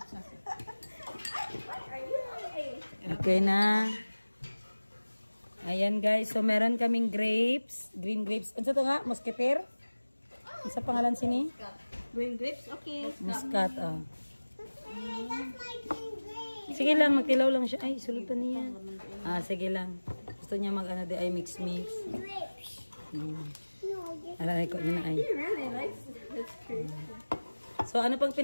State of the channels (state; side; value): inverted; both; correlation -1.00